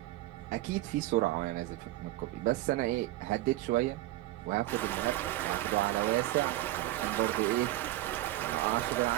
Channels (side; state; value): left; quieter; 16.2 dB